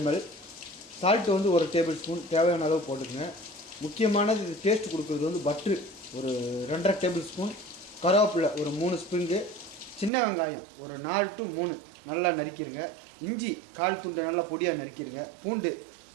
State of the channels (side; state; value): left; drops out; at 10.1 s